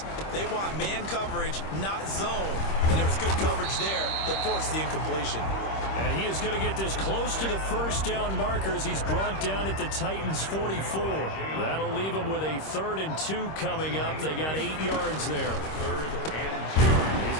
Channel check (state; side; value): late; right; 26 ms